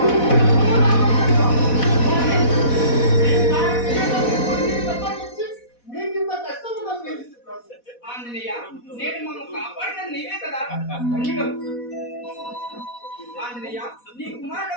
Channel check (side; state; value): right; late; 4.1 ms